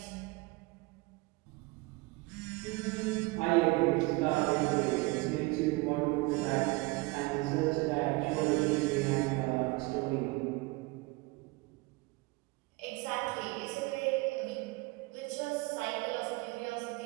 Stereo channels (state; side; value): quieter; left; 24.5 dB